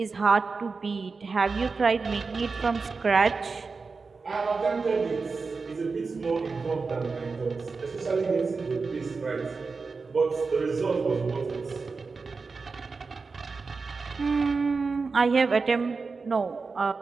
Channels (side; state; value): left; quieter; 4.4 dB